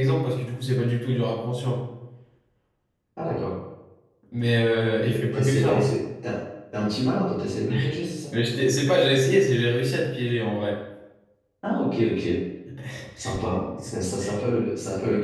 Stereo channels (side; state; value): both; identical; correlation 1.00